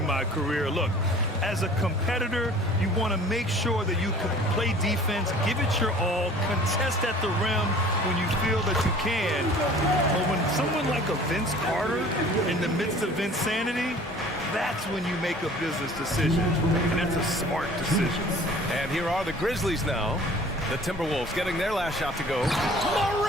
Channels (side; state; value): both; normal; correlation 0.48